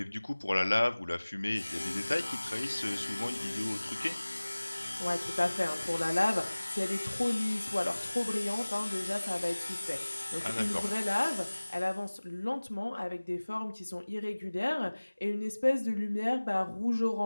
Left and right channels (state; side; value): inverted; both; correlation -1.00